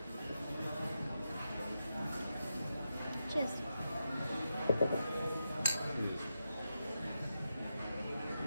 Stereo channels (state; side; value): inverted; both; correlation -0.88